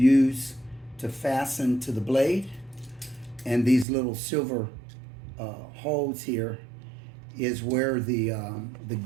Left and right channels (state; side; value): drops out; left; at 3.9 s